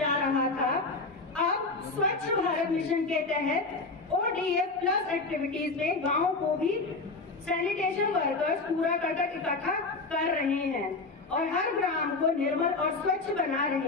रहा था, अब स्वच्छ भारत मिशन के तहत ODF प्लस एक्टिविटीज में गाँव को भी सैनिटेशन वर्कर्स कूड़ा करकट इकट्ठा कर रहे हैं और हर ग्राम को निर्मल और स्वच्छ बना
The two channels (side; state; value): right; quieter; 3.6 dB